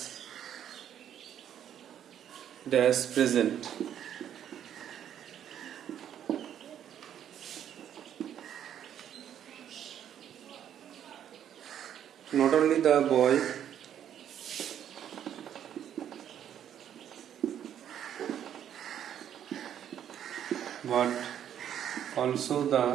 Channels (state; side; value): quieter; left; 9.9 dB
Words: dash present. Not only the boy but also the